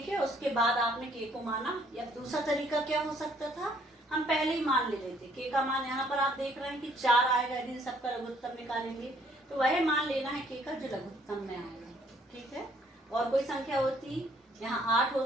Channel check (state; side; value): normal; both; correlation 0.64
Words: है, उसके बाद आपने k को माना। या दूसरा तरीका क्या हो सकता था, हम पहले ही मान ले लेते k का मान। यहाँ पर आप देख रहे हैं कि 4 आएगा, यदि सबका लघुत्तम निकालेंगे तो वह मान लेना है k का जो लघुत्तम में आएगा। ठीक है, और कोई संख्या होती यहाँ 8